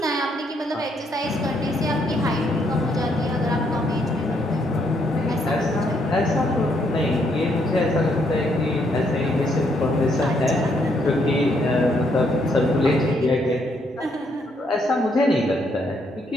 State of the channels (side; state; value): both; normal; correlation 0.73